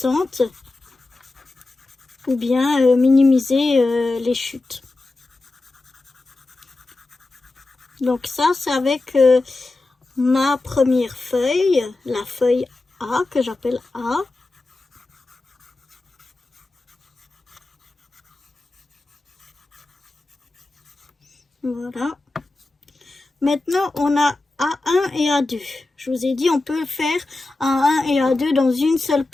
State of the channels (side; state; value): right; quieter; 3.1 dB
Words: ou bien minimiser les chutes. Donc ça, c'est avec ma première feuille, la feuille A, que j'appelle A. Voilà. Maintenant, on a A1 et A2. Je vous ai dit, on peut faire A1 et A2 dans une seule